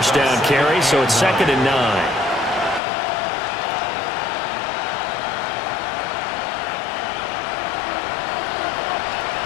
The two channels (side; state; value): right; drops out; at 2.8 s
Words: down carry, so it's 2nd and 9.